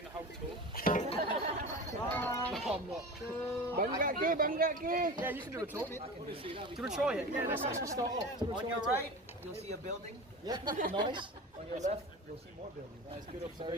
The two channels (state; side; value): normal; both; correlation 0.31